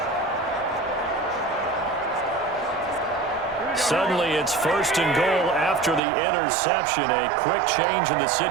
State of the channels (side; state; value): left; drops out; at 6.0 s